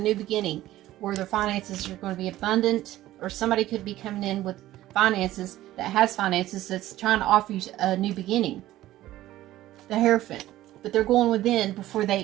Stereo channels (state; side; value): quieter; left; 15.0 dB